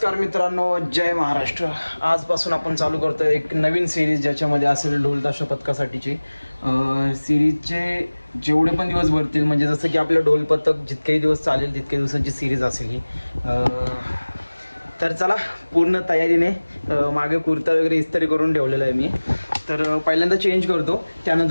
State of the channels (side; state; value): both; inverted; correlation -1.00